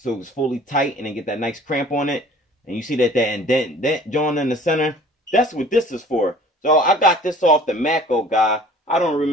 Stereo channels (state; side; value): normal; both; correlation 0.49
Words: it's fully tight and then get that nice cramp on it, and you see that indent joint in the center, that's what this is for. So I got this off the Mako guy. I don't